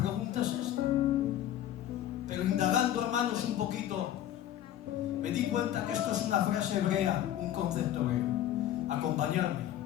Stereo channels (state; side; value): quieter; right; 11.9 dB